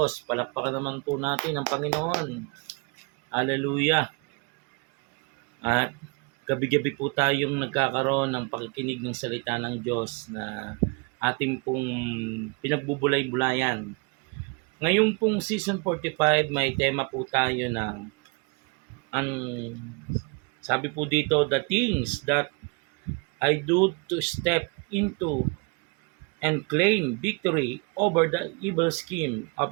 Palakpakan naman po natin ang Panginoon. Hallelujah. At gabi-gabi po tayong nagkakaroon ng pakikinig ng salita ng Diyos na ating pong pinagbubulay-bulayan. Ngayon pong season 45, may tema po tayo na ang sabi po dito, the things that I do to step into and claim victory over the evil scheme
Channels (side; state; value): left; quieter; 31.1 dB